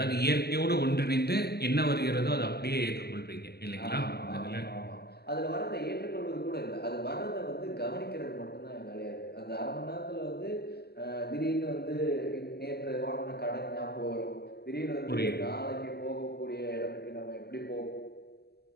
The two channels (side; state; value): right; late; 0.46 ms